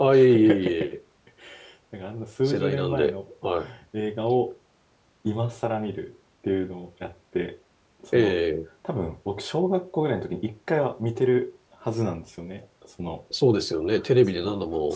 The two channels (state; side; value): identical; both; correlation 1.00